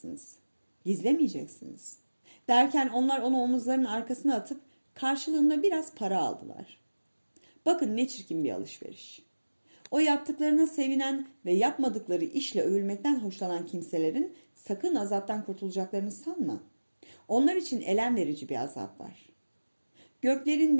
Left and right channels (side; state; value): both; inverted; correlation -1.00